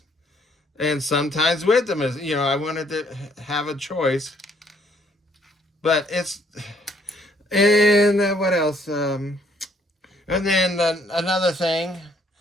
and sometimes with them. I wanted to have a choice. But and what else? And then another thing,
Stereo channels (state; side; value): normal; both; correlation 0.66